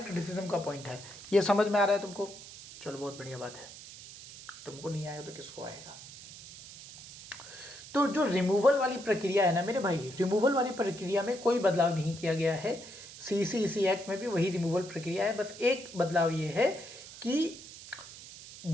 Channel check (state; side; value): noise; right; hiss, 15 dB below the sound